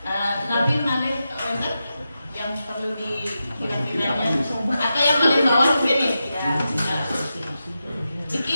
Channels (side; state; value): both; inverted; correlation -0.90